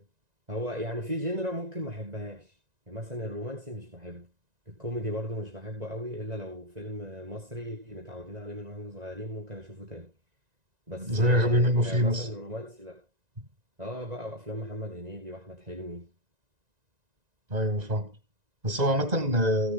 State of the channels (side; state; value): left; late; 1.9 ms